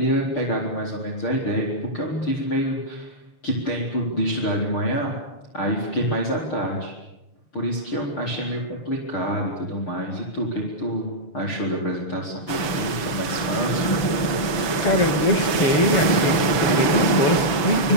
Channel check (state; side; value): late; right; 6.7 ms